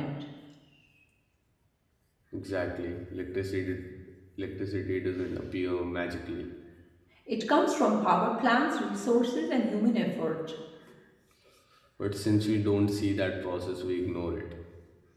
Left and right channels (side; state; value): both; identical; correlation 1.00